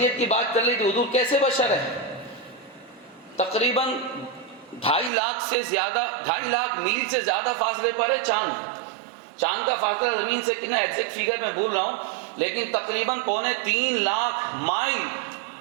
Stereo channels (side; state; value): left; drops out; at 5.1 s